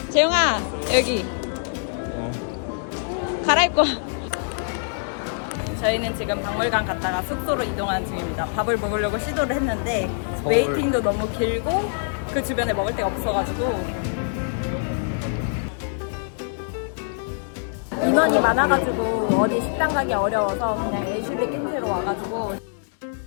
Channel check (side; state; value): right; silent; digital silence